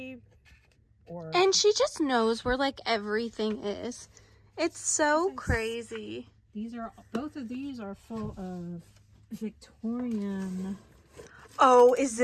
or... And she just knows where like everything is. It's so crazy. Both of these are full of Victorian. Oh, is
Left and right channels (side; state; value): both; identical; correlation 1.00